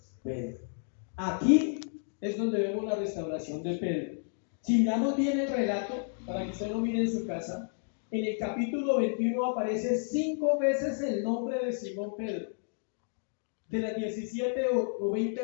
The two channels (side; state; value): right; silent; digital silence